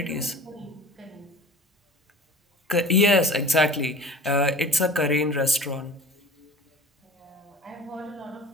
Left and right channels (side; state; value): both; normal; correlation 0.40